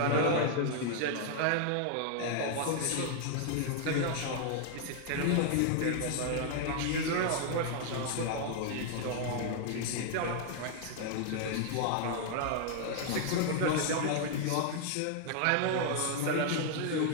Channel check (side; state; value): both; different; correlation 0.00